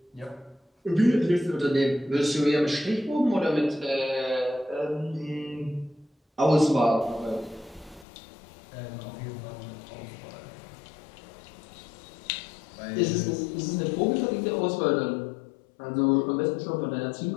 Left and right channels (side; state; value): right; drops out; at 8.1 s